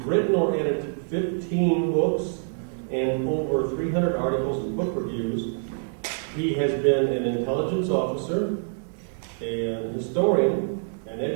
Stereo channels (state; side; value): silent; left; 61 dB below the other